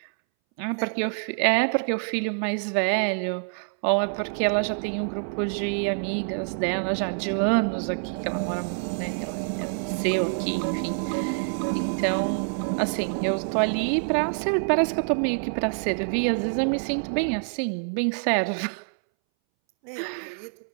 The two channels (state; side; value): silent; left; 61 dB below the other